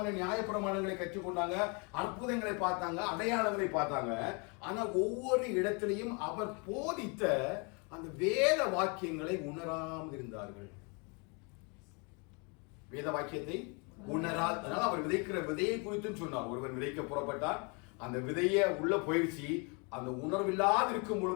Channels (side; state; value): right; quieter; 32.9 dB